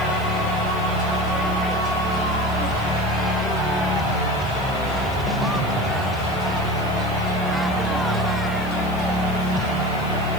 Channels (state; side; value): noise; right; hiss, 21 dB below the sound